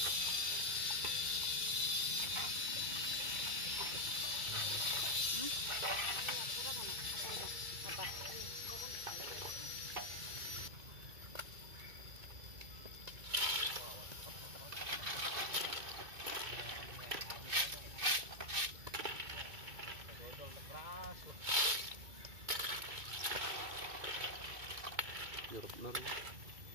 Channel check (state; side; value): late; left; 2.2 ms